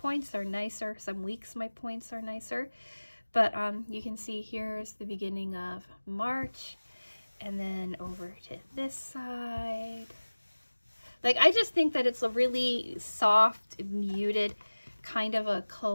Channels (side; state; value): both; inverted; correlation -1.00